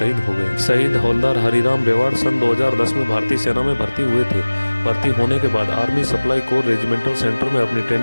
हो गए। शहीद हवलदार हरिराम रेवाड़ सन 2010 में भारतीय सेना में भर्ती हुए थे। भर्ती होने के बाद army supply core regimental centre में अपनी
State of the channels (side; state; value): both; inverted; correlation -1.00